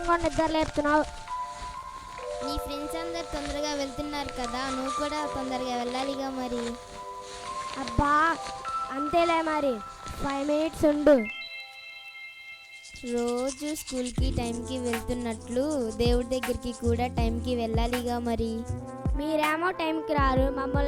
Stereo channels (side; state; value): both; identical; correlation 1.00